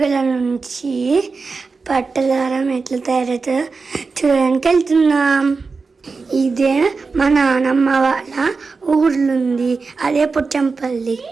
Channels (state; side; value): quieter; left; 4.4 dB